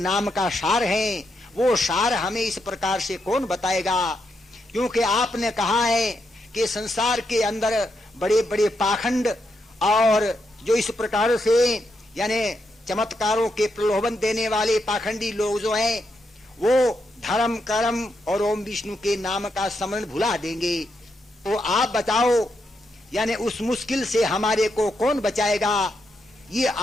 का सार है वो सार हमें इस प्रकार से कौन बताएगा। क्योंकि आपने कहा है कि संसार के अंदर बड़े बड़े पाखंड और जो इस प्रकार से यानी चमत्कारों के प्रलोभन देने वाले पाखंडी लोग जो हैं वो धर्म कर्म और ओम विष्णु के नाम का स्मरण भुला देंगे। तो आप बताओ यानी उस मुश्किल से हमारे को कौन बचाएगा, ये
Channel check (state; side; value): normal; both; correlation 0.82